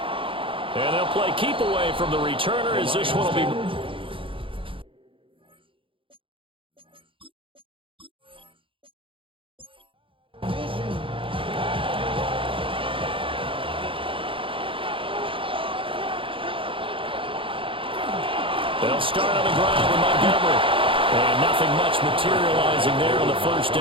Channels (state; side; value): late; left; 0.25 ms